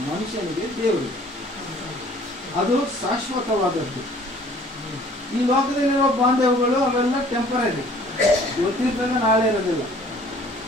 ಮನುಷ್ಯನಿಗೆ ದೇವರು, ಅದು ಶಾಶ್ವತವಾದದ್ದು. ಈ ಲೋಕದಲ್ಲಿರುವ ಬಾಂಧವ್ಯಗಳು ಅವೆಲ್ಲ ಟೆಂಪರರಿ, ಇವತ್ತಿರ್ತದೆ ನಾಳೆ ಇರೋದಿಲ್ಲ.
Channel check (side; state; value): both; normal; correlation 0.54